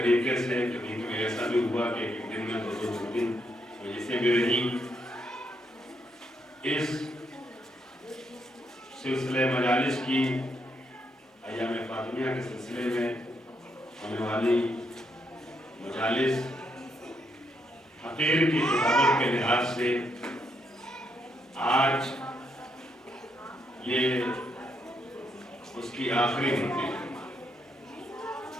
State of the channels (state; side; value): normal; both; correlation 0.77